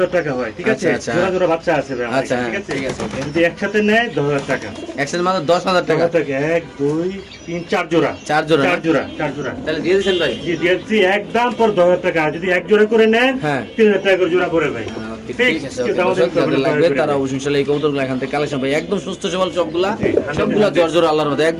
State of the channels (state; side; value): identical; both; correlation 1.00